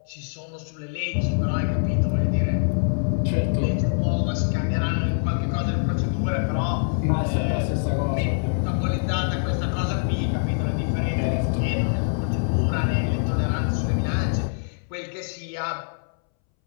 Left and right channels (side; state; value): right; silent; 62 dB below the other